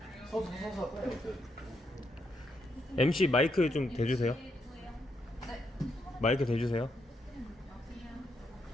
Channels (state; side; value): normal; both; correlation 0.78